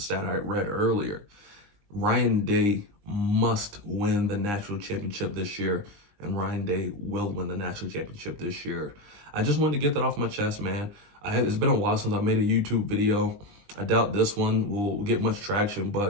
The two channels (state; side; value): late; left; 20 ms